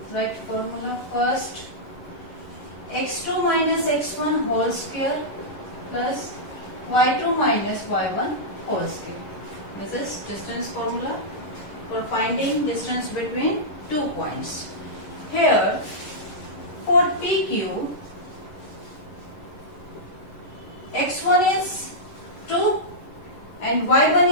Write formula first. x2 minus x1 whole square plus y2 minus y1 whole square. This is distance formula for finding distance between 2 points. Here, for PQ, x1 is 2 and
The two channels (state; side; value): late; right; 11 ms